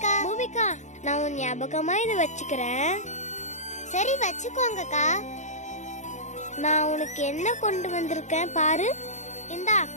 பூமிகா, நான் உன் ஞாபகமா இதை வச்சுக்கிறேன். சரி வச்சுக்கோங்கக்கா. நான் உனக்கு என்ன கொண்டு வந்திருக்கேன் பாரு. இந்தா,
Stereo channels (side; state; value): right; late; 0.34 ms